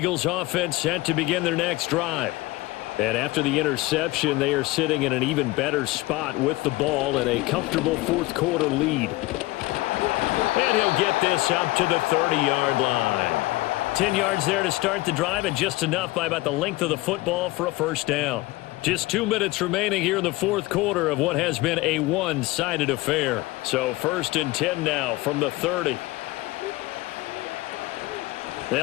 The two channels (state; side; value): quieter; right; 20.0 dB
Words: offense set to begin their next drive. And after the interception, they are sitting in an even better spot with the ball and a comfortable 4th quarter lead. And he'll get this up to the 30-yard line. 10 yards there to start the drive, and just enough by about the length of the football for a 1st down. Just 2 minutes remaining here in the 4th quarter of what has been a one-sided affair. So 1st and 10 now from the 30.